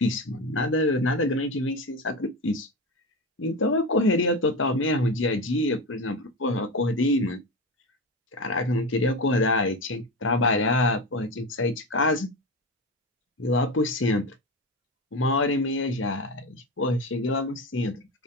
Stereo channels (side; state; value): both; normal; correlation 0.21